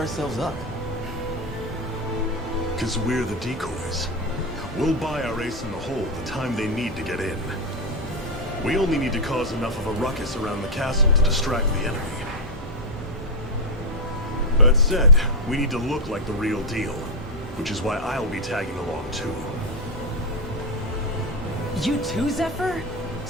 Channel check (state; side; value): normal; both; correlation 0.03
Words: up? Because we're the decoys. We'll buy our ace in the hole the time they need to get in. We only need to cause enough of a ruckus around the castle to distract the enemy. That said, we need to look like the real deal, which is why I'll be tagging along too. You too, Zephyr?